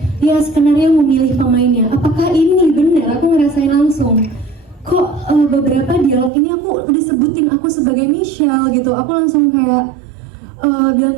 ya skenario memilih pemainnya, apakah ini benar? Aku ngerasain langsung kok beberapa dialog ini aku udah sebutin aku sebagai Michelle gitu. Aku langsung kayak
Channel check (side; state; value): left; drops out; at 6.3 s